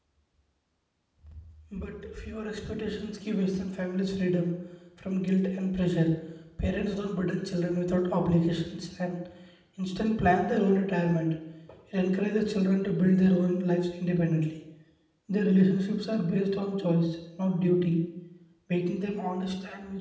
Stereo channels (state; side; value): identical; both; correlation 1.00